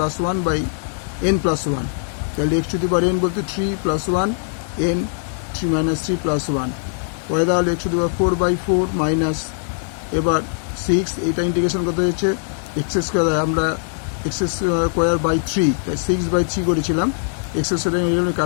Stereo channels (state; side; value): silent; right; digital silence